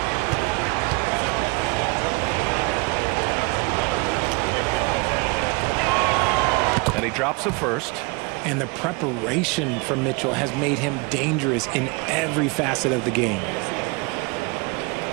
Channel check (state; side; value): quieter; left; 28.9 dB